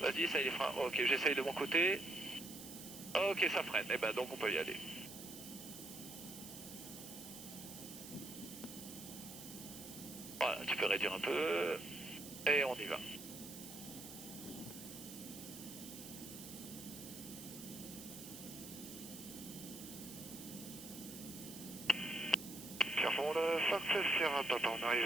essaye les freins. Ok, j'essaye de mon côté. Ok, ça freine. Eh ben, donc on peut y aller. Voilà, tu peux réduire un peu. Et on y va. Pierrefonds, le Fox Sierra Papa, on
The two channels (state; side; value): noise; right; hiss, 12 dB below the sound